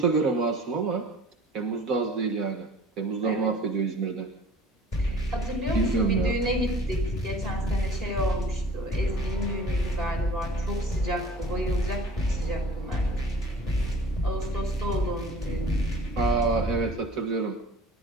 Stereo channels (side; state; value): both; normal; correlation 0.46